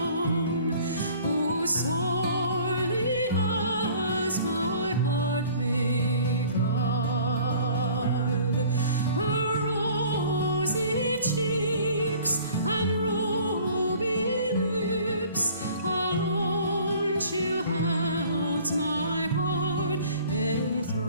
who sorely has my heart beguiled. Her rosy cheeks and ruby lips alone she holds my heart in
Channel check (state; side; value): inverted; both; correlation -0.51